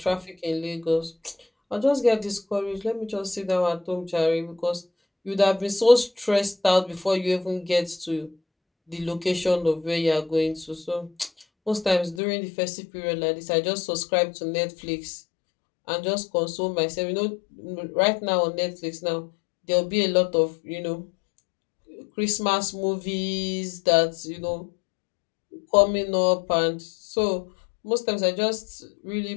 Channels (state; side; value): drops out; right; at 12.2 s